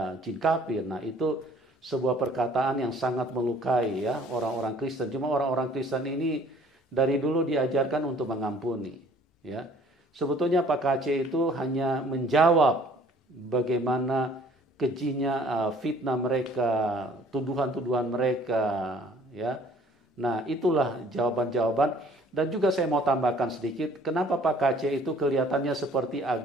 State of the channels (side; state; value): both; normal; correlation 0.55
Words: jin kafir. Nah itu sebuah perkataan yang sangat melukai ya orang-orang Kristen. Cuma orang-orang Kristen ini dari dulu diajarkan untuk mengampuni. Ya, sebetulnya Pak KC itu hanya menjawab bagaimana kejinya fitnah mereka, tuduhan-tuduhan mereka, ya. Nah, itulah jawaban-jawaban. Dan juga saya mau tambahkan sedikit, kenapa Pak KC itu kelihatannya seperti